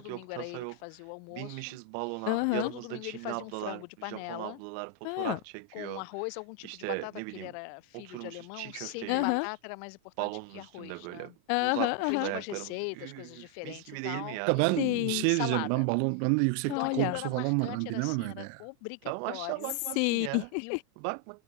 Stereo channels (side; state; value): both; different; correlation 0.00